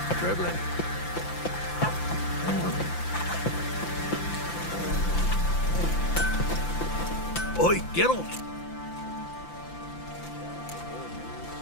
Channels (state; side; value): late; right; 5.9 ms